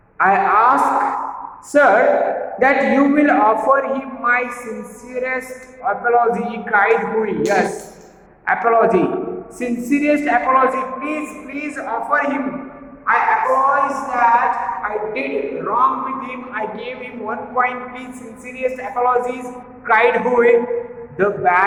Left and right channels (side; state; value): both; identical; correlation 1.00